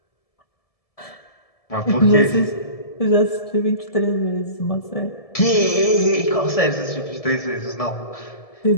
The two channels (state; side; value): late; right; 1.7 ms